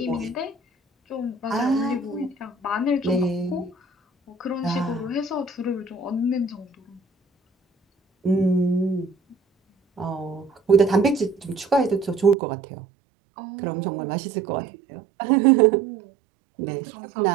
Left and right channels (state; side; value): drops out; left; at 12.4 s